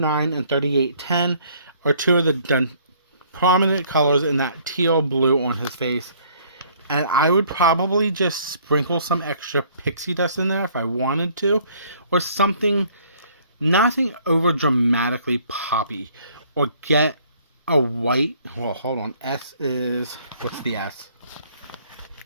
and 3810 are two of the prominent colors in that teal blue on his face. And I would probably just sprinkle some extra pixie dust in there if I wanted to. Or something, nothing over dramatically poppy. Or get a white, well, hold on, S is, what's the S?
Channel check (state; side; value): inverted; both; correlation -0.60